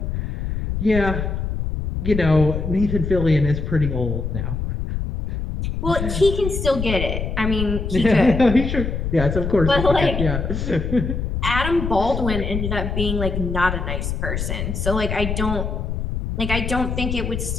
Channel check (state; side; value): noise; left; rumble, 3 dB below the sound